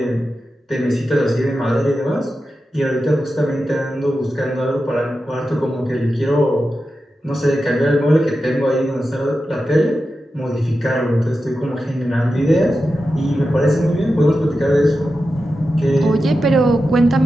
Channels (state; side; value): normal; both; correlation 0.91